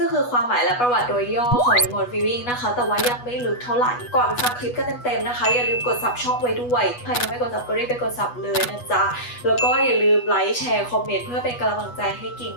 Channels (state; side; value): late; right; 8.2 ms